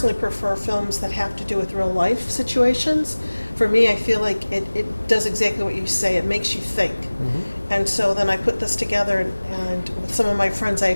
prefer films that have to do with real life situations. For me, I feel like it does exactly what you say. It makes you think. Mm-hmm. And so then I put this together, and with some of my friends, I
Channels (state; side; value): inverted; both; correlation -1.00